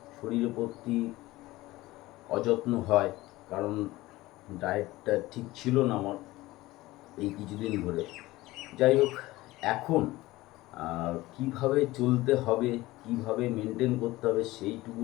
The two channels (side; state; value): right; quieter; 18.6 dB